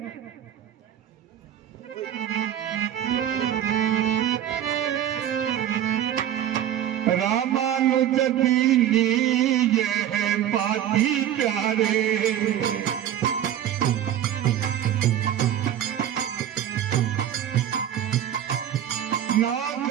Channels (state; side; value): quieter; left; 10.8 dB